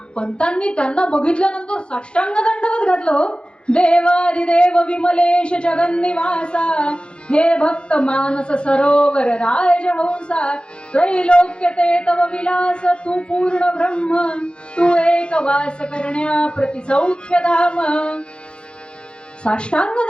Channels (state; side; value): late; right; 0.054 ms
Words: पंतांनी त्यांना बघितल्यानंतर साष्टांग दंडवत घातलं हो. देवादिदेव विमलेश जगन्निवासा, हे भक्त मानस सरोवर राजहंसा. त्रैलोक्य ते तव विलास, तू पूर्ण ब्रह्म, तू एक वास करण्या प्रति सौख्य धाम. साष्टांग